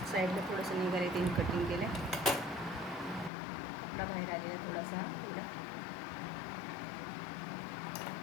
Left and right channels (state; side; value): drops out; right; at 3.3 s